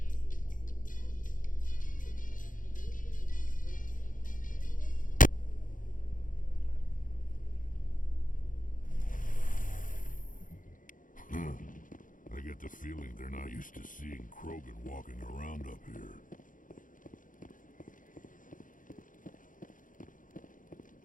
I get the feeling they're not used to seeing Krogan walking around up here.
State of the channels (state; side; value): late; right; 0.39 ms